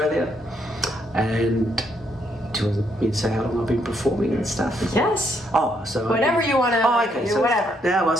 And do you want me to say how long I've been performing and stuff? Yes. Oh, so Whatever you want to. Oh, okay. So whatever. now I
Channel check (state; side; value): normal; both; correlation 0.74